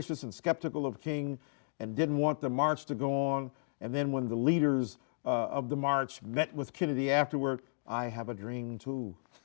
and skeptical of King and didn't want the march to go on. And then when the leaders of the march met with Kennedy afterward, I have a dream too.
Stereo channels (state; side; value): silent; right; digital silence